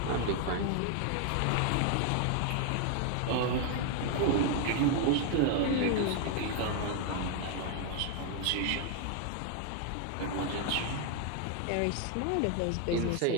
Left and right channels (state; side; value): different; both; correlation 0.00